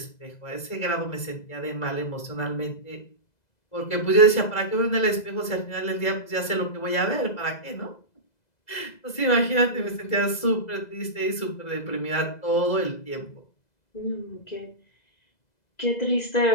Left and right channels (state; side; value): late; right; 2.0 ms